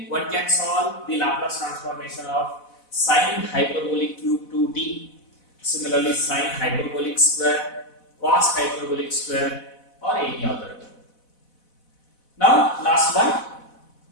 one can solve the Laplace transformation of sin hyperbolic cube 2t. Similarly, sin hyperbolic square, cos hyperbolic square, or any other. Now, last one.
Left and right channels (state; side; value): late; right; 4.1 ms